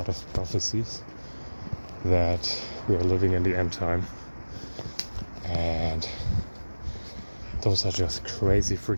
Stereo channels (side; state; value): both; inverted; correlation -1.00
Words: of prophecies that we are living in the end time, and those are just crazy